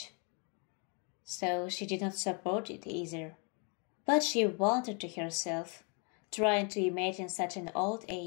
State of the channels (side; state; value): right; quieter; 36.2 dB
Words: so she did not support it either. But she wondered to herself, trying to imagine such an old